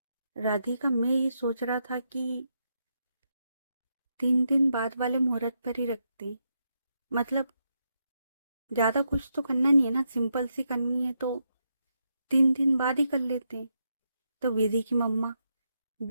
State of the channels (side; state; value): both; inverted; correlation -0.82